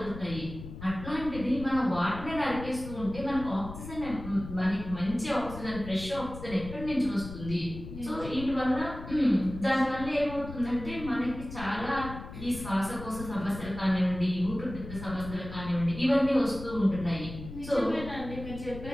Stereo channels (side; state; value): left; noise; rumble, 11 dB below the sound